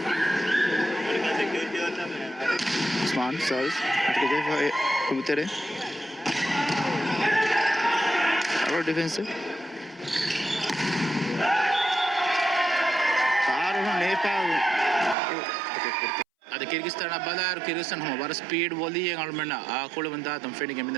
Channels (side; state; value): left; drops out; at 15.2 s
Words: Osman serves Kubutere. Our defensive. Nepal. ಅದು ಕಿರ್ಗಿಸ್ತಾನ ಬಲಾರ್ ಕಿರ್ಗಿಸ್ತಾನ್ ಹಮ ಬರ ಸ್ಪೀಡ್ ಒಲಿ ಅಳ್ಮಣ್ಣ ಆ ಕುಳು ಬಂದ ತಮ್ಮ ಫೆಣಿಗೆ